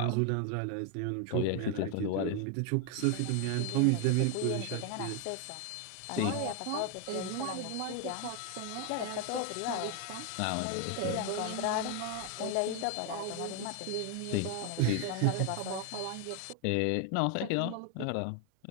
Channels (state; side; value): different; both; correlation 0.01